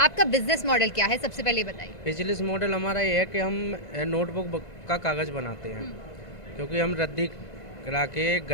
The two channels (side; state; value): right; late; 1.5 ms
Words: बिजनेस मॉडल क्या है, सबसे पहले बताइए। बिजनेस मॉडल हमारा ये है कि हम नोटबुक का कागज़ बनाते हैं, क्योंकि हम रद्दी करा के